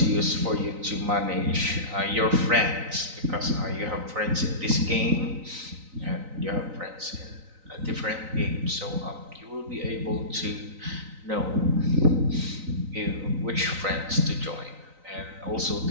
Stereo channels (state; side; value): late; left; 3.9 ms